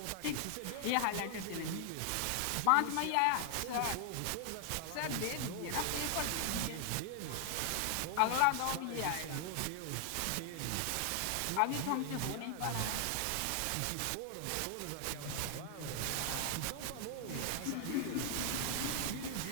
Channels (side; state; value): both; different; correlation 0.00